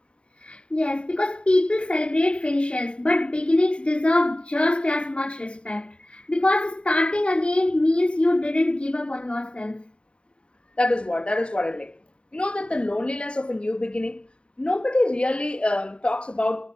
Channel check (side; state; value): right; late; 0.054 ms